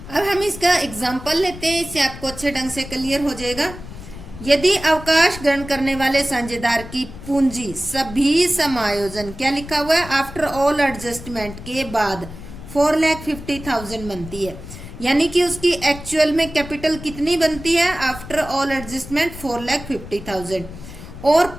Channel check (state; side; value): noise; left; rumble, 13 dB below the sound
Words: अब हम इसका एग्जाम्पल लेते हैं, इससे आपको अच्छे ढंग से क्लियर हो जाएगा। यदि अवकाश ग्रहण करने वाले साझेदार की पूंजी सभी समायोजन, क्या लिखा हुआ है, आफ्टर ऑल एडजस्टमेंट के बाद 4,50,000 बनती है, यानी कि उसकी एक्चुअल में कैपिटल कितनी बनती है आफ्टर ऑल एडजस्टमेंट 4,50,000 और